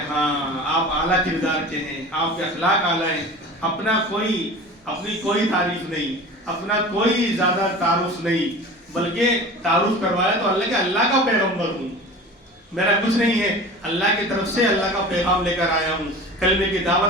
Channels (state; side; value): normal; both; correlation 0.37